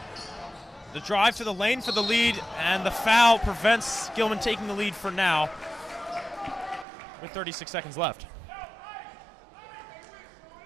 The drive to the lane for the lead, and the foul prevents Gilman taking the lead for now with 36 seconds left.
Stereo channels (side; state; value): left; drops out; at 6.9 s